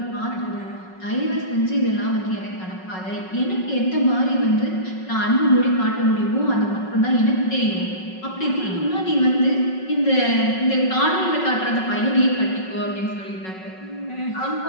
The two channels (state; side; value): late; right; 5.4 ms